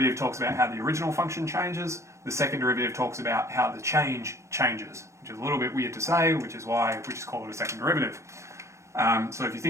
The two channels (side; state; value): left; late; 0.14 ms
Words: talks about how the original function changes, the second derivative talks about how the change changes, which is a little bit weird to say, which is why we just call it a second derivative. So if you